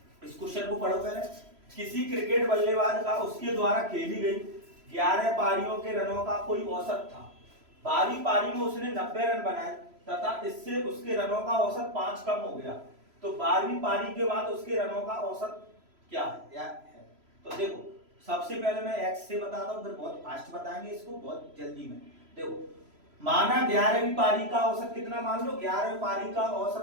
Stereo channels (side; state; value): left; late; 3.0 ms